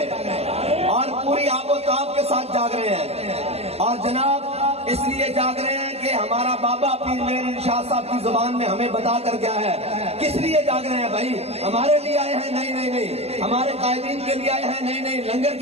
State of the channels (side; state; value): left; late; 0.30 ms